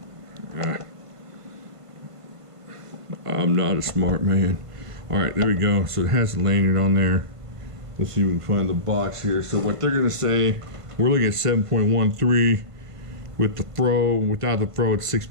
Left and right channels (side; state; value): left; late; 1.5 ms